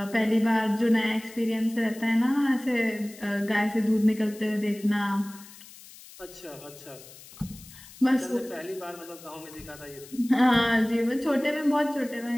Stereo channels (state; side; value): noise; left; hiss, 19 dB below the sound